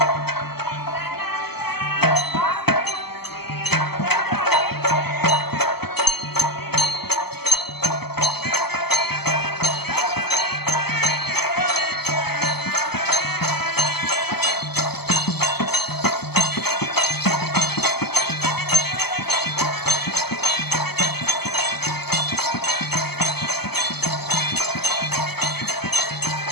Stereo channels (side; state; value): right; late; 0.96 ms